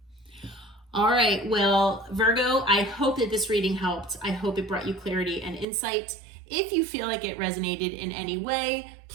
All right. Well, Virgo, I hope that this reading helped. I hope it brought you clarity and insight. If you feel like it resonated in any way,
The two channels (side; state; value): left; drops out; at 5.7 s